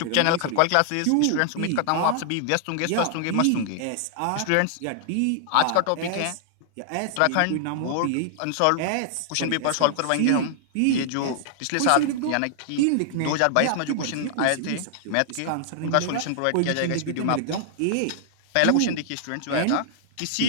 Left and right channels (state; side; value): different; both; correlation -0.01